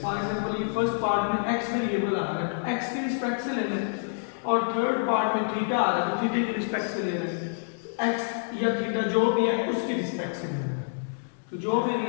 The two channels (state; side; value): silent; right; 60 dB below the other